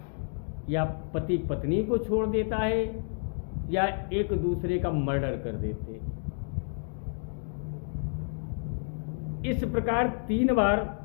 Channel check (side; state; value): right; silent; 58 dB below the other